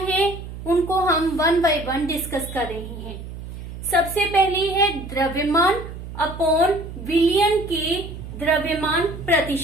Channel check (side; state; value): right; noise; hum, 11 dB below the sound